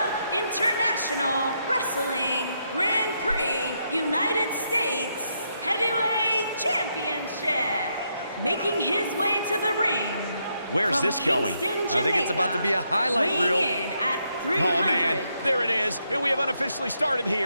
International Wrestling Grand Prix United States Heavyweight Championship. Making his way to the ring. Where's this going? Kingston, I think it's about to be a highlight reel. Weighing in at 300. Oh, man. There it is. And we have unofficially started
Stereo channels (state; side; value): inverted; both; correlation -0.79